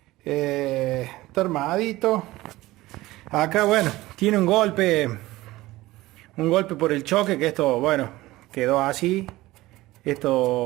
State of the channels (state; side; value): quieter; left; 18.2 dB